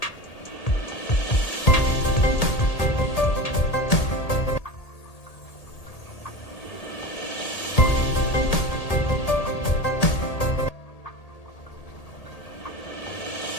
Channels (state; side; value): late; right; 1.8 ms